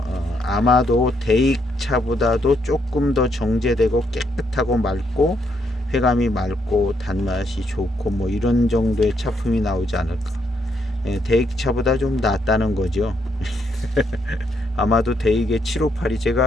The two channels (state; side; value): normal; both; correlation 0.75